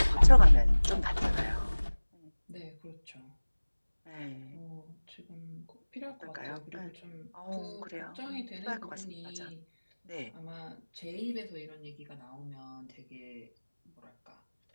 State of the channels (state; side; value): inverted; both; correlation -1.00